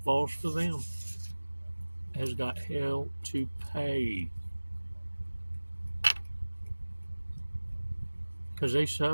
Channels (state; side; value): inverted; both; correlation -1.00